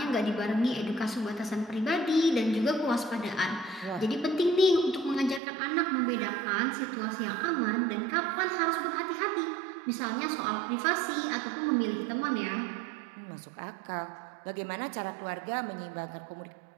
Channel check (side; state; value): left; drops out; at 5.4 s